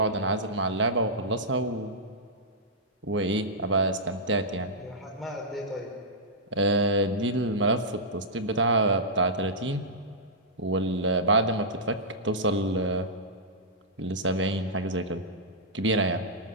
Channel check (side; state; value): both; normal; correlation -0.13